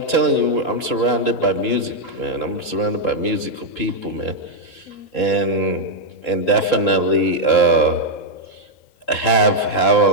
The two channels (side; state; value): right; late; 3.8 ms